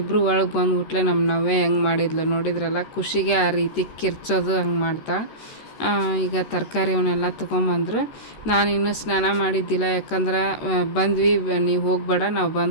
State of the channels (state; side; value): late; right; 13 ms